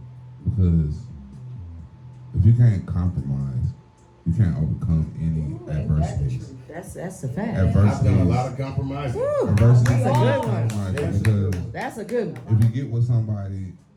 Because if you can't compromise, you can't overcome any adversities. That's a fact. I've done a lot of compromising. Adversities That's a good one. Because That's a good one. if you get with somebody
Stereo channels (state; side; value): identical; both; correlation 1.00